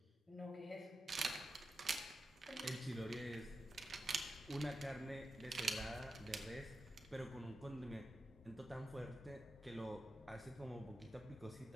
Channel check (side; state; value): both; normal; correlation 0.89